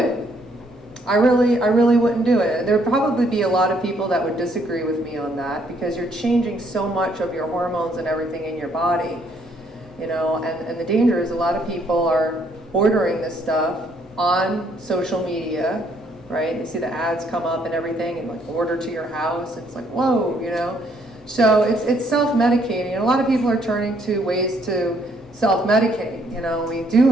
I really wouldn't do it. There'd probably be a lot of people that would disagree with me on that, because you're changing so much of your hormones and everything in your body, you know, and the danger is a lot of people are ordering this stuff on social media, right? You see the ads come up and everything, and like order to your house. It's like, whoa, you know? So it's self-medicating, and a lot of people are turning to ways to self-medicate. You know, we do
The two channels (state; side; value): normal; both; correlation 0.68